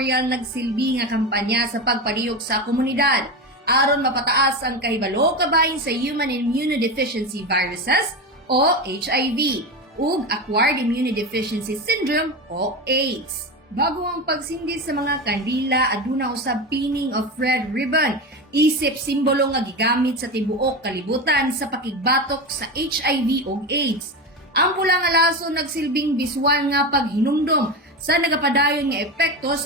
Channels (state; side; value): normal; both; correlation 0.20